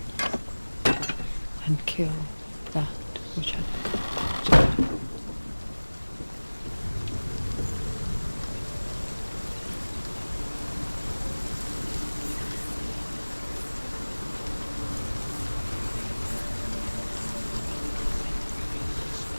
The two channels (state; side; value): inverted; both; correlation -1.00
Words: and kill that which had become dead.